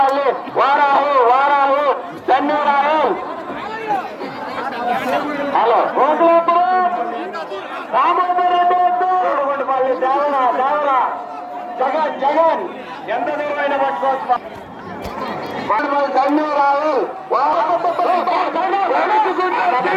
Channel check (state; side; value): identical; both; correlation 1.00